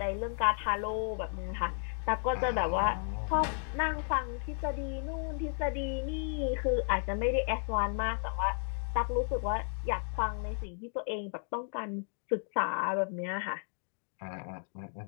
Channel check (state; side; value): silent; right; 55 dB below the other